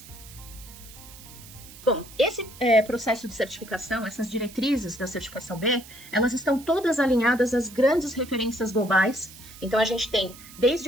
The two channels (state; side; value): noise; right; hiss, 18 dB below the sound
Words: Bom, esse processo de certificação, essas diretrizes da certificação B, elas estão todas alinhadas às grandes referências globais. Então, a gente tem